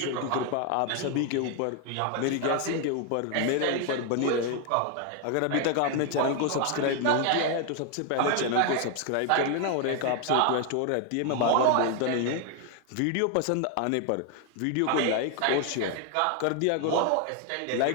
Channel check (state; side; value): different; both; correlation 0.00